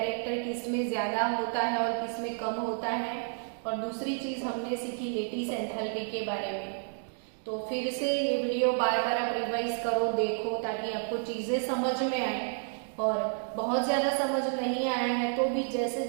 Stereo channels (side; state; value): left; silent; 57 dB below the other